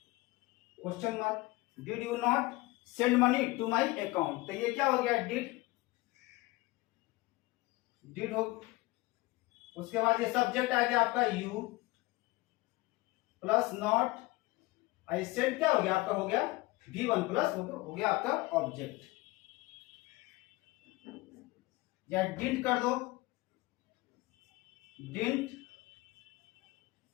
Question mark. Did you not send money to my account, तो ये क्या हो गया? डिड हो, उसके बाद ये सब्जेक्ट आ गया आपका you plus not, I send क्या हो गया? आपका हो गया V1 प्लस हो गया आपका ऑब्जेक्ट। या डिडंट कर दो, didn't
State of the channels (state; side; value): quieter; right; 21.3 dB